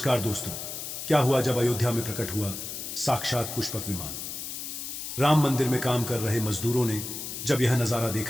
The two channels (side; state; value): left; noise; hiss, 7 dB below the sound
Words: दोस्तों। क्या हुआ जब अयोध्या में प्रकट हुआ साक्षात पुष्पक विमान। राम मंदिर में काम कर रहे मजदूरों ने जब यह नजारा